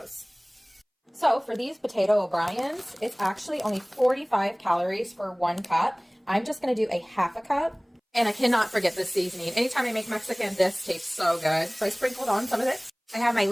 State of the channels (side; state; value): both; identical; correlation 1.00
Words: So for these potato O'Briens, it's actually only 45 calories for 1 cup. I'm just going to do a half a cup. And I cannot forget this seasoning. Anytime I make Mexican, this tastes so good. So I sprinkled on some of it. I have my